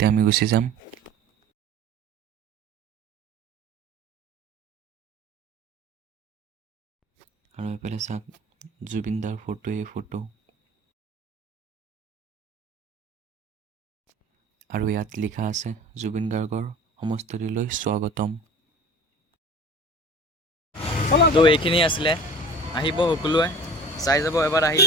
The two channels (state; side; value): normal; both; correlation 0.41